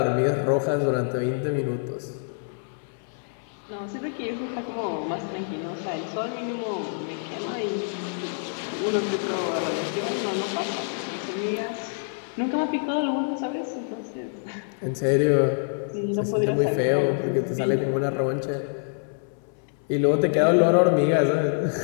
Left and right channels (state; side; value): silent; right; 61 dB below the other